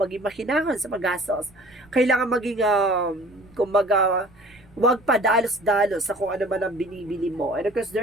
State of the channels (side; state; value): right; noise; rumble, 28 dB below the sound